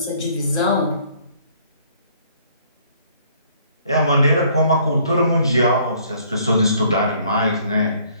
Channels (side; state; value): both; inverted; correlation -0.61